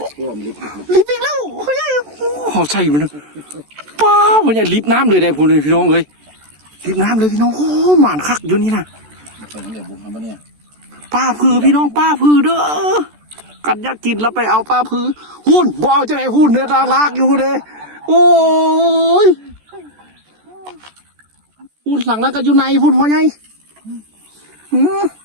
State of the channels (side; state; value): left; late; 14 ms